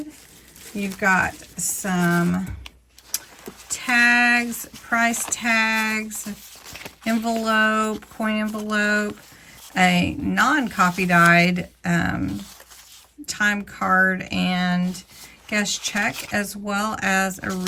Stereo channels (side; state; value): both; identical; correlation 1.00